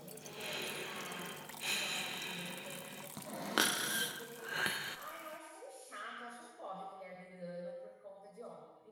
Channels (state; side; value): identical; both; correlation 1.00